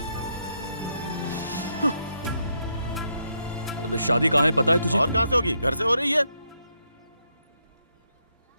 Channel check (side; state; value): both; inverted; correlation -0.78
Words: अब शादी कहाँ है पता है तुझे? और कहाँ से होगी? घर से हो रही है।